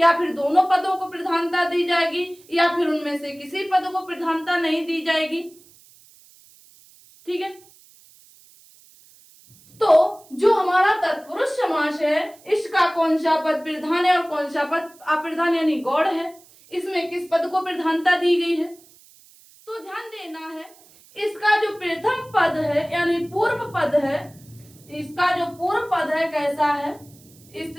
फिर दोनों पदों को प्रधानता दी जाएगी, या फिर उनमें से किसी पद को प्रधानता नहीं दी जाएगी। ठीक है, तो जो हमारा तत्पुरुष समास है इसका कौन सा पद प्रधान है और कौन सा पद अप्रधान यानी गौड़ है, इसमें किस पद को प्रधानता दी गई है, तो ध्यान देना है। इसका जो प्रथम पद है यानी पूर्व पद है, इसका जो पूर्व पद है कैसा है,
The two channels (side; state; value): right; noise; hiss, 26 dB below the sound